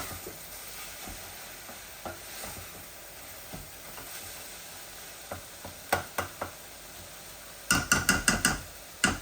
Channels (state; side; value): identical; both; correlation 1.00